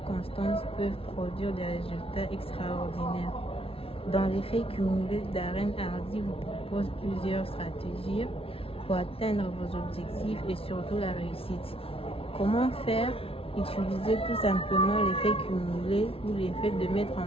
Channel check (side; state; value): right; late; 0.27 ms